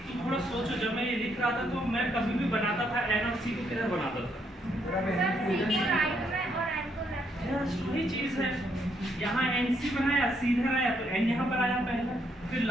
तुम थोड़ा सोचो। जब मैं ये लिख रहा था तो मैं कभी भी बनाता था N और C को किधर बनाता था? वही चीज है, यहाँ NC बनाया, C इधर आया तो N यहाँ पर आया पहले, फिर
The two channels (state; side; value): normal; both; correlation 0.74